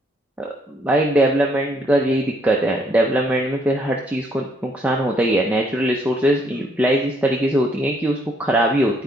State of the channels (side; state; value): both; normal; correlation 0.68